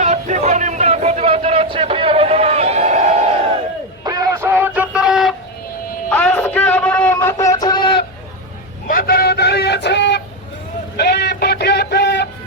তীব্র নিন্দা প্রতিবাদ জানাচ্ছি। প্রিয় বন্ধুগণ, প্রিয় সহযোদ্ধারা, আজকে আমারও মাথা ছেড়ে মাথায় দাঁড়িয়েছে এই পটিয়াতে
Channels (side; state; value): both; normal; correlation 0.08